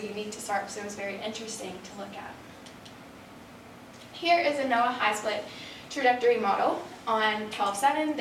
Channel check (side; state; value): both; identical; correlation 1.00